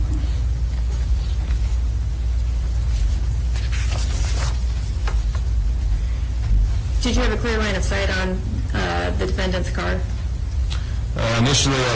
Did you have a clear line of sight on the defendant's car? Initially, I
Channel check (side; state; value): both; identical; correlation 1.00